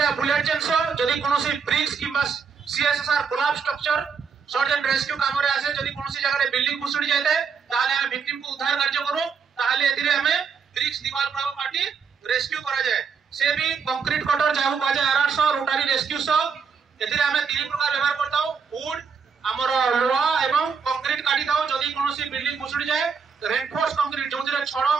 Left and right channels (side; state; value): left; quieter; 6.0 dB